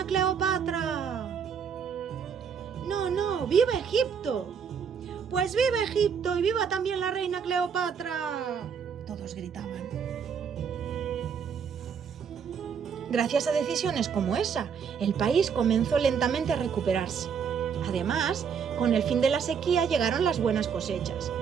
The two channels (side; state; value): left; quieter; 6.9 dB